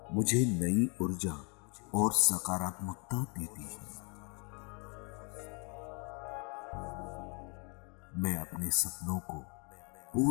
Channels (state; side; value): quieter; right; 34.2 dB